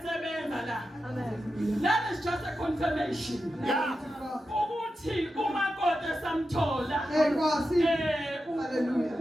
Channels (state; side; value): normal; both; correlation 0.90